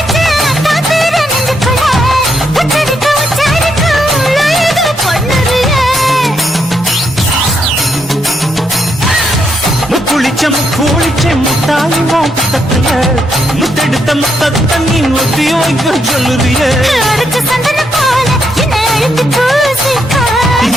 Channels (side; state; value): both; normal; correlation 0.78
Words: குளிச்ச முட்டாயும் புத்தத்துல முத்தெடுத்த முத்தத்தை நீ ஒத்தி வைக்க சொல்லுறிய அரைச்ச சந்தன போல என்னை அழுத்தி பூசிக்கோ